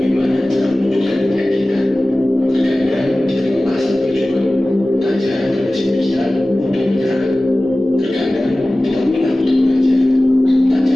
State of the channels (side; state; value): both; normal; correlation 0.97